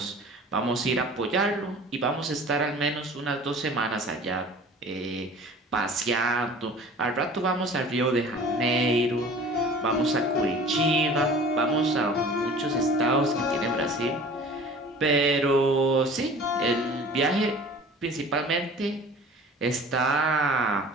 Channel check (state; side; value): normal; both; correlation 0.44